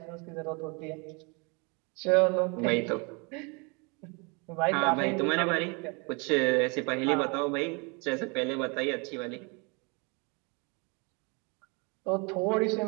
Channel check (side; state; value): left; quieter; 31.3 dB